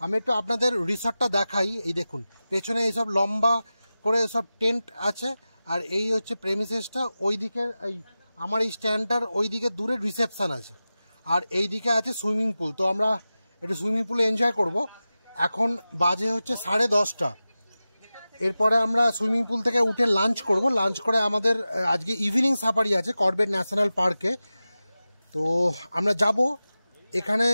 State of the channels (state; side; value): inverted; both; correlation -0.95